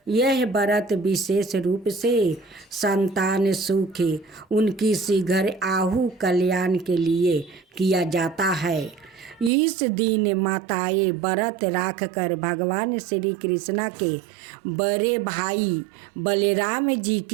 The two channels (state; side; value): drops out; left; at 9.5 s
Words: यह व्रत विशेष रूप से संतान सुख उनकी शीघ्र आहु कल्याण के लिए किया जाता है। इस दिन माताएं व्रत रख कर भगवान श्री कृष्ण के बड़े भाई बलराम जी